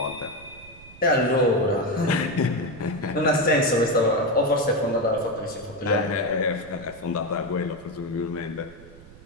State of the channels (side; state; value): right; noise; rumble, 20 dB below the sound